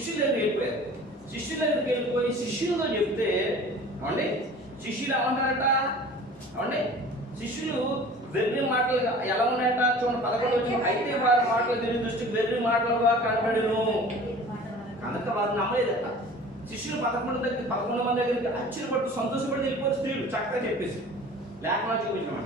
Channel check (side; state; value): both; normal; correlation 0.43